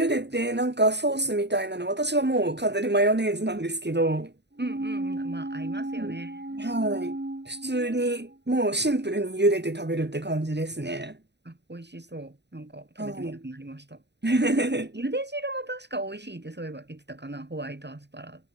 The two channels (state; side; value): late; left; 0.50 ms